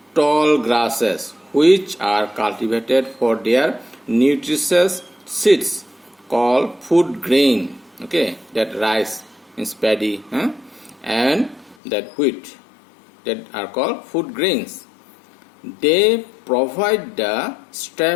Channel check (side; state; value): right; drops out; at 11.8 s